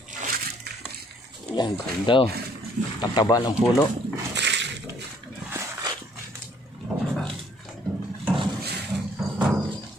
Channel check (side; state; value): both; normal; correlation 0.63